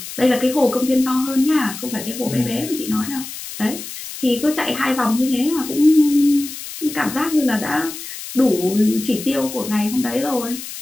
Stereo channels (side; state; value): left; noise; hiss, 10 dB below the sound